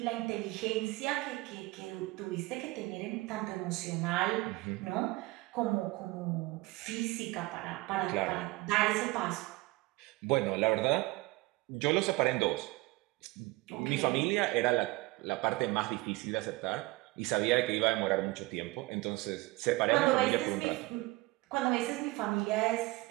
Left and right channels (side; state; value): left; quieter; 21.6 dB